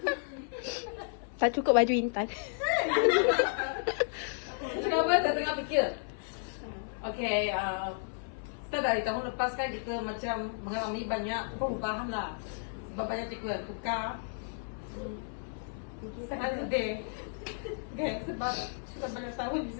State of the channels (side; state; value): right; silent; 56 dB below the other